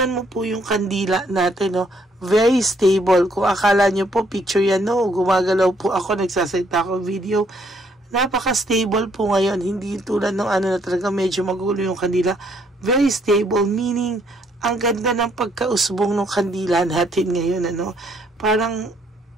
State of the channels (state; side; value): normal; both; correlation 0.68